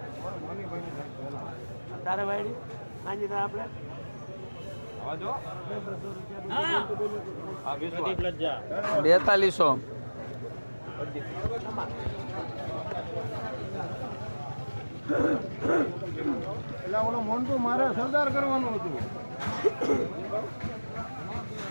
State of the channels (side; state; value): both; inverted; correlation -1.00